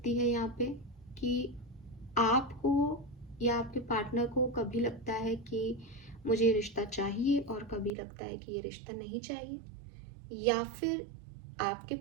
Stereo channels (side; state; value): left; drops out; at 7.9 s